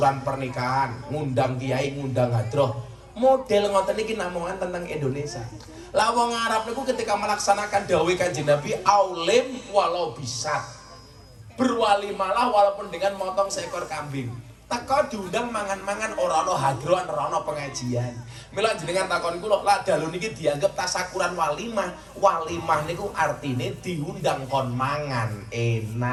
pernikahan, ngundang kiai, ngundang hadroh. Model ngoten iki namungan tentang Indonesia. Lah wong Arab niku ketika melaksanakan dawuh Kanjeng Nabi, aulim walau bisat. Berwalimalah walaupun dengan motong seekor kambing. Teko diundang mangan-mangan ora ana hadrohan, ora ana pengajian. Mila jenengan takon kula, lah dalu niki dianggap tasyakuran walimah. Walimah niku artine diundang kon mangan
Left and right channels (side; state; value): both; identical; correlation 1.00